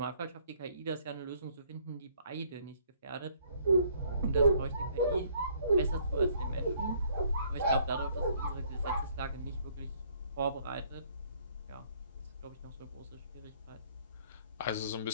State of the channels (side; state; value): both; inverted; correlation -0.63